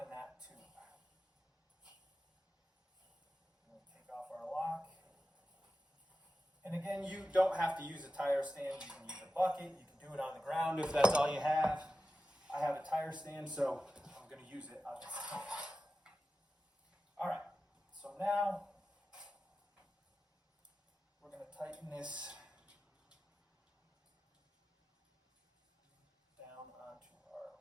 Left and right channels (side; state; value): both; normal; correlation 0.93